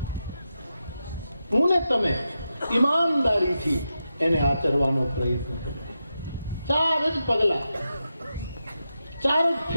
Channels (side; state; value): both; inverted; correlation -0.88